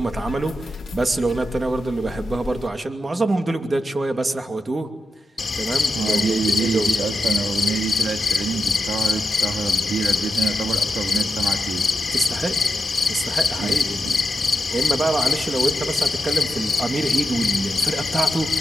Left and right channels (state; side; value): normal; both; correlation 0.87